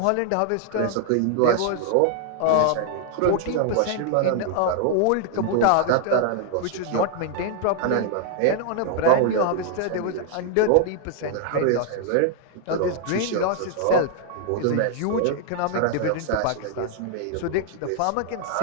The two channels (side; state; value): both; different; correlation 0.00